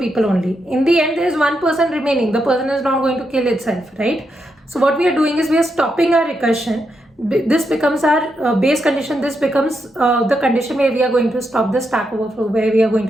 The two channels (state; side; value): normal; both; correlation 0.83